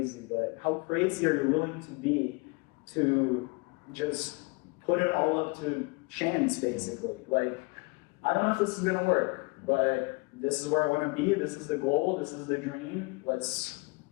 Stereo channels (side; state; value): right; quieter; 28.4 dB